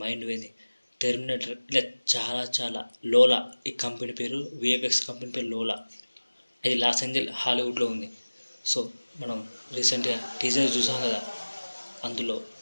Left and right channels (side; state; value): both; inverted; correlation -1.00